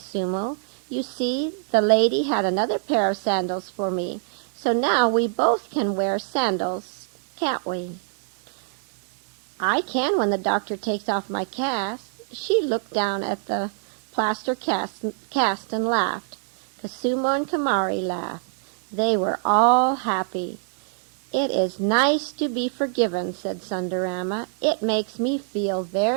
"You see, the lady had another pair of sandals for me, so now we both can wear sandals, can't we?" "I can when the doctor takes off my cast." She looked down at the plaster cast and laughed. Koosumo and Kamari laughed. They were all happy. "It is nice to be forgiven," said Sundarama. "It makes me feel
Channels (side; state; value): left; silent; digital silence